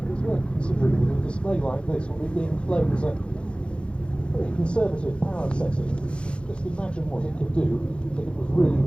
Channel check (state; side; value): late; right; 0.057 ms